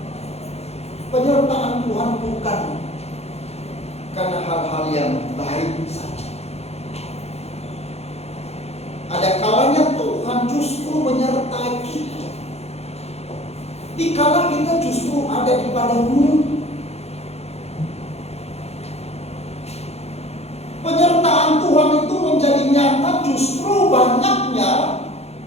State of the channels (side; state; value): right; late; 0.30 ms